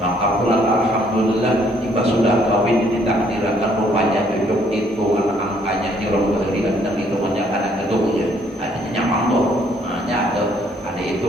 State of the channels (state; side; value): normal; both; correlation 0.65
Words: Maka pulang alhamdulillah jika sudah kawin ditakdirkan rupanya cucuk itu angkanya nyuruh kehadiran dan itu menyatakan gedungnya adanya nyaman tuh, ada